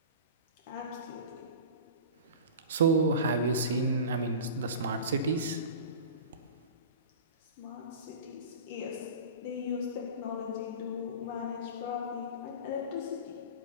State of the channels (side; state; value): both; inverted; correlation -0.33